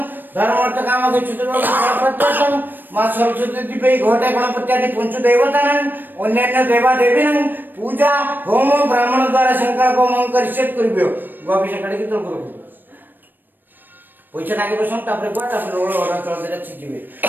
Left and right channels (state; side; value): late; left; 0.092 ms